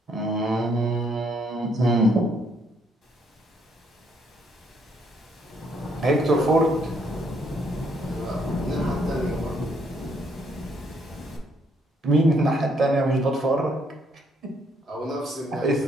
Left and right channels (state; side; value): normal; both; correlation 0.70